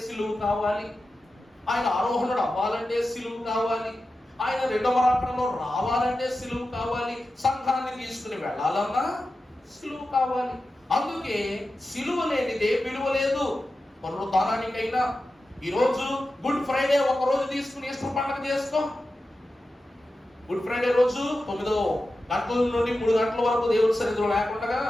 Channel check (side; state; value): both; normal; correlation 0.92